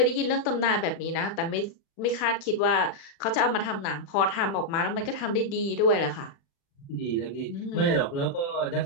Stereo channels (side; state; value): right; late; 36 ms